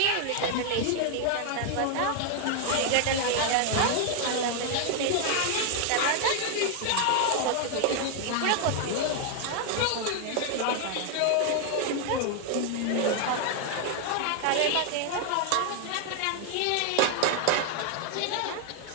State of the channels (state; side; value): different; both; correlation 0.00